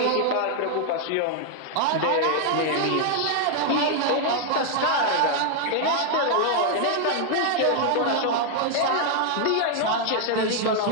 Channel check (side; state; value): both; different; correlation 0.00